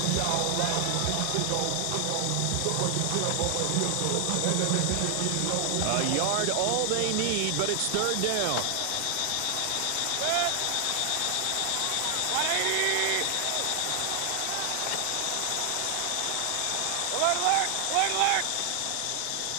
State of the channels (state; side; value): different; both; correlation 0.00